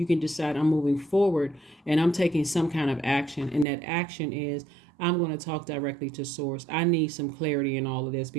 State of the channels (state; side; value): drops out; left; at 3.7 s